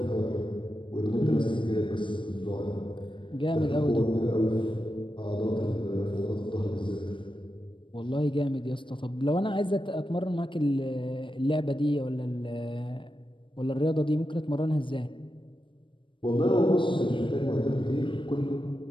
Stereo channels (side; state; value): right; late; 0.24 ms